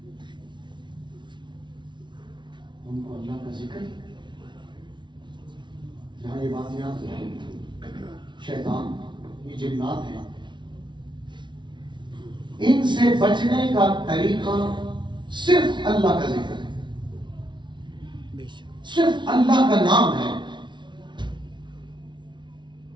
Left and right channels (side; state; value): left; late; 0.23 ms